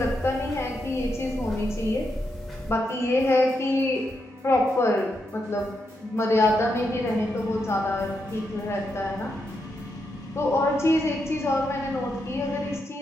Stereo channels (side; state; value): both; normal; correlation 0.83